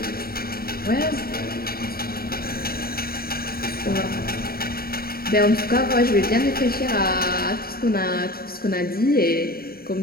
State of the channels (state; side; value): late; right; 0.44 ms